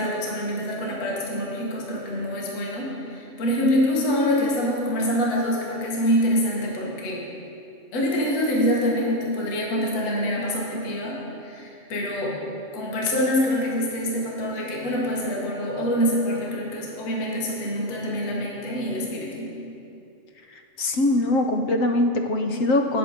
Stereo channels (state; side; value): late; right; 7.6 ms